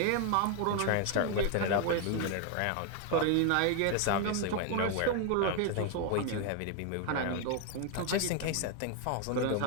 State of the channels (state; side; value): different; both; correlation 0.01